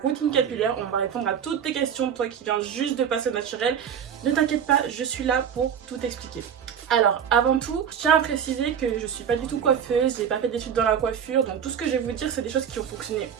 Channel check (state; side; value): quieter; left; 8.1 dB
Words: routine capillaire, on va répondre à toutes tes questions, toi qui viens juste de passer au naturel. Ne t'inquiète pas, je suis là pour tout expliquer. Alors avant tout, je tiens à préciser que je suis pas du tout coiffeuse, j'ai pas fait d'études dans la coiffure, donc tout ce que je vais vous dire c'est des choses qui ont fonctionné